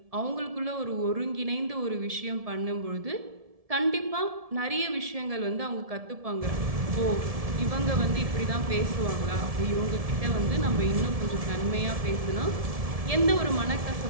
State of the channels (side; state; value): left; late; 1.7 ms